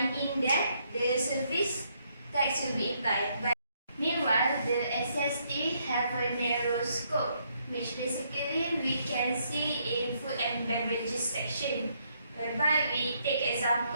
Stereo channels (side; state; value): both; inverted; correlation -0.73